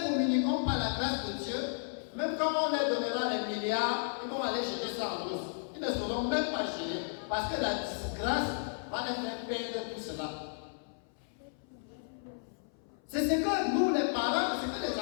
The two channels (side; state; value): right; silent; 55 dB below the other